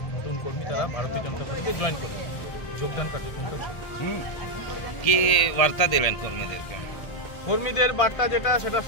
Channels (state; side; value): late; right; 1.8 ms